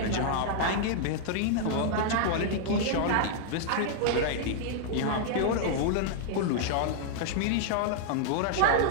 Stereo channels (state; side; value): different; both; correlation -0.01